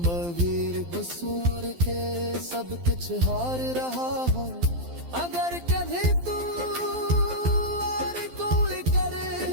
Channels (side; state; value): left; late; 12 ms